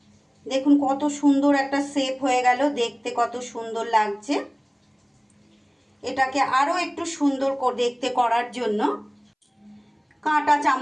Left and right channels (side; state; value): both; identical; correlation 1.00